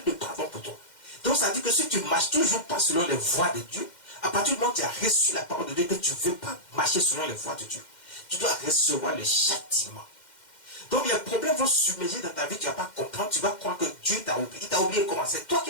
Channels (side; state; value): right; late; 2.1 ms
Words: pardon pour toi. Donc ça veut dire que si tu ne marches toujours pas selon les voies de Dieu, à partir du moment où tu as reçu la parole de Dieu, que tu ne veux pas marcher selon les voies de Dieu, tu dois recevoir le châtiment. Donc les problèmes vont submerger dans ta vie, tu ne vas pas comprendre, tu vas croire que Dieu t'a oublié. Il t'a oublié comment? C'est toi qui